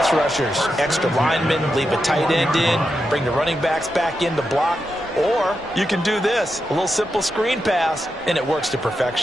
rushers. Extra linemen, leave a tight end in, bring the running backs back in to block. Or you can do this, a little simple screen pass, and it works to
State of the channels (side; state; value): both; normal; correlation 0.87